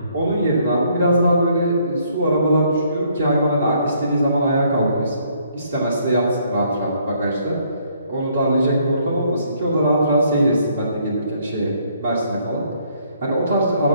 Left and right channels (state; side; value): inverted; both; correlation -0.67